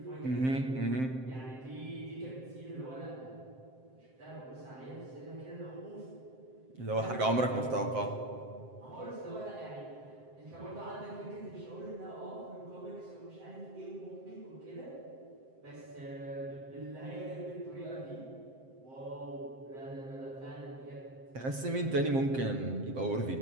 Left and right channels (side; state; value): left; late; 7.7 ms